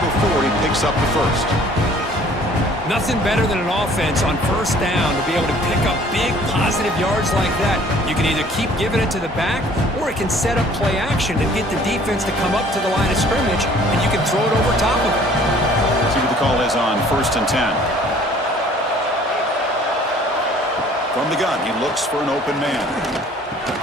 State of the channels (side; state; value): both; normal; correlation 0.54